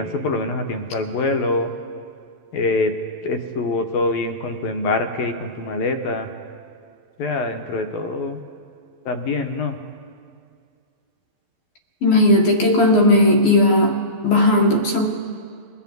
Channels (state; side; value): late; right; 11 ms